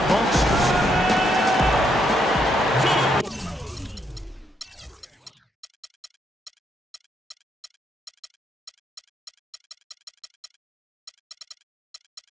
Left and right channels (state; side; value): normal; both; correlation 0.76